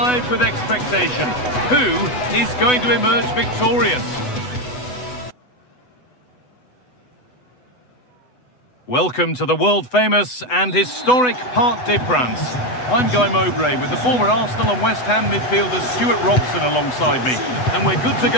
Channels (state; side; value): late; right; 8.0 ms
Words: with expectation. Who is going to emerge victorious? Welcome to the world-famous and historic Parc des Princes. I'm Guy Mowbray with the former Arsenal and West Ham midfielder Stuart Robson alongside me. And we're good to